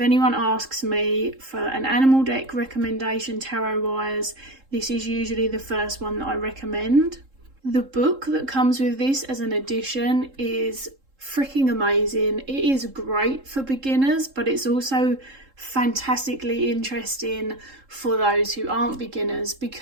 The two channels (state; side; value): late; left; 3.7 ms